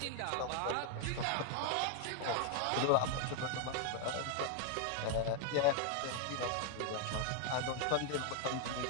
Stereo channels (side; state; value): both; different; correlation 0.01